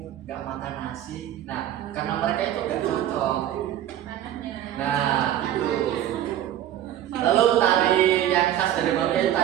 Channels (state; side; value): quieter; left; 11.9 dB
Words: nggak makan nasi? Nah, karena mereka itu nggak cocok. Nah, itu. Lalu tari yang khas dari Maluku itu